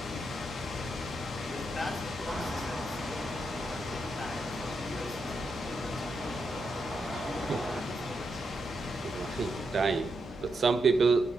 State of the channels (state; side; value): normal; both; correlation 0.83